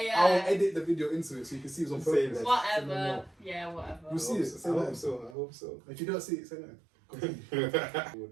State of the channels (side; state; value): left; drops out; at 5.4 s